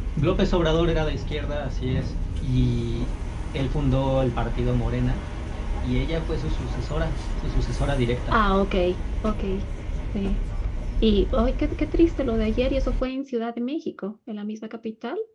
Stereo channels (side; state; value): both; identical; correlation 1.00